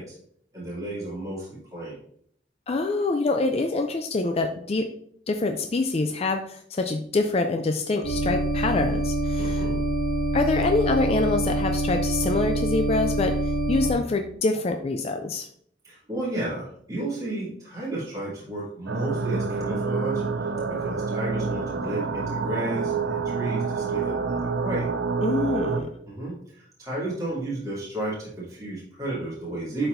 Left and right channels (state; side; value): normal; both; correlation 0.42